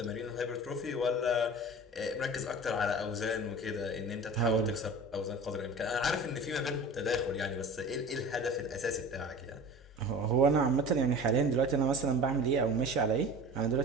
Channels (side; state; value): both; normal; correlation 0.38